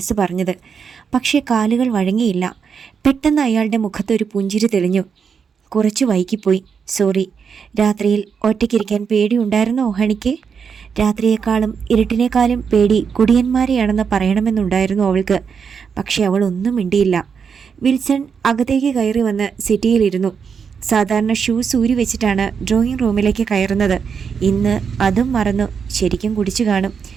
പറഞ്ഞത്. പക്ഷേ കാലുകൾ വഴങ്ങിയില്ല. പെട്ടെന്ന് അയാളുടെ മുഖത്തൊരു പുഞ്ചിരി തെളിഞ്ഞു. കുറച്ച് വൈകിപ്പോയി, സോറി. രാത്രിയിൽ ഒറ്റയ്ക്കിരിക്കാൻ പേടിയുണ്ടായിരുന്നോ ഹണിക്ക്? രാത്രിയേക്കാളും ഇരുട്ടിനേക്കാളും പേടി കുടിയന്മാരെയാണെന്ന് പറയണമെന്നുണ്ടായിരുന്നു അവൾക്ക്. പക്ഷെ അവൾ ഒന്നും മിണ്ടിയില്ല. വിൽസൺ അകത്തേക്ക് കയറി വന്ന് സിറ്റിയിലിരുന്നു. സാധാരണ ഷൂസ് ഊരി വെച്ചിട്ടാണ് ഡ്രോയിങ് റൂമിലേക്ക് കയറുന്നത്. ഇന്ന് അതും മറന്നു. ശരിക്കും കുടിച്ചു കാണും.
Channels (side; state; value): left; quieter; 6.4 dB